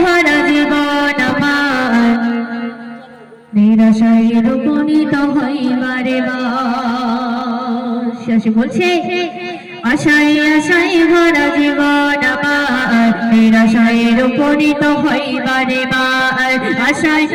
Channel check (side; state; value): both; identical; correlation 1.00